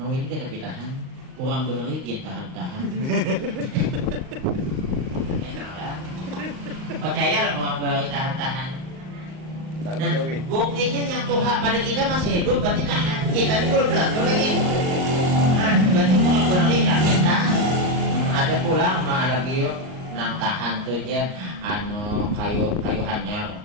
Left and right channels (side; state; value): left; late; 38 ms